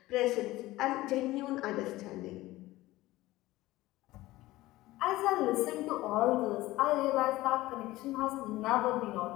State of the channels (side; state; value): right; quieter; 17.7 dB